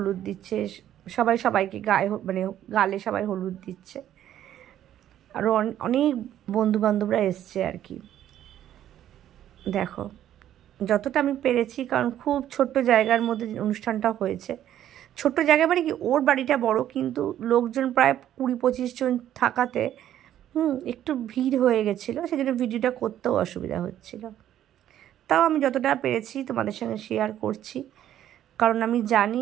দিচ্ছে, সবাই সবাইকে গায়ে মানে গালে সবাই হলুদ দিচ্ছে। আরও অনেক বন্ধুবান্ধবরা এসছে আর কি। দেখো যতটা আমি পেরেছি, কারণ খুব ছোট্ট জায়গার মধ্যে অনুষ্ঠানটা হয়েছে। ছোট্ট জায়গা মানে কি, ওর বাড়িটা বড়, কিন্তু লোকজন প্রায় 20-25 জন থাকাতে একটু ভিড় হয়ে গেছিলো, সেই জন্য ভিডিওটা করতেও অসুবিধা হচ্ছিল। তাও আমি যতটা পেরেছি তোমাদের সঙ্গে শেয়ার করছি, কারণ আমি জানি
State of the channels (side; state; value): left; quieter; 11.5 dB